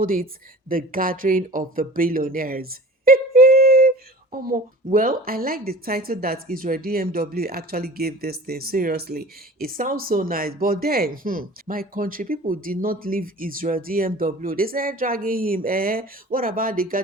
it the gathering of the billionaires. Well, I like the title that Israel DMW actually gave this thing. Seriously, it sounds so nice. But then, my country people did not leave Israel DMW. They started dragging him. What about the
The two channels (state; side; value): normal; both; correlation 0.41